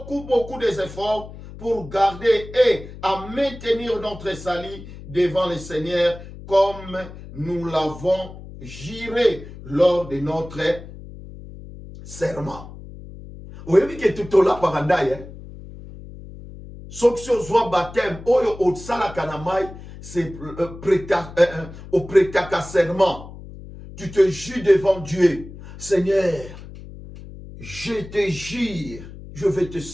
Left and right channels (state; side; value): noise; left; hum, 15 dB below the sound